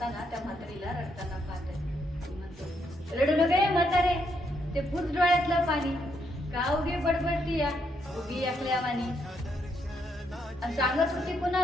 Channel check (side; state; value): both; normal; correlation 0.76